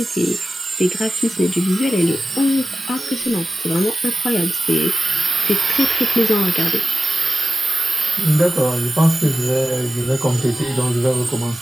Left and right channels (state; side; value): normal; both; correlation 0.93